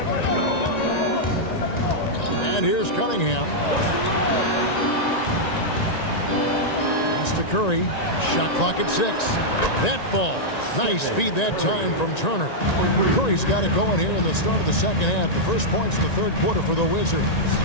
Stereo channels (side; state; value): right; late; 1.9 ms